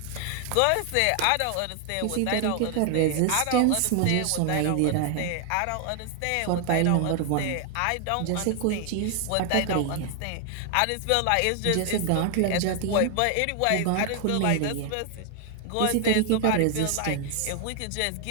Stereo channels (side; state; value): both; different; correlation 0.00